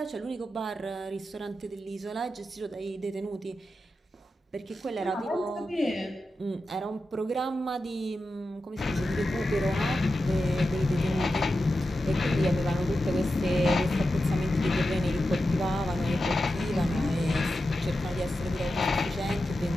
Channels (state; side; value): normal; both; correlation 0.90